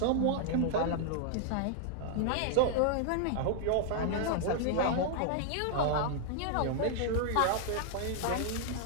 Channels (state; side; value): different; both; correlation -0.01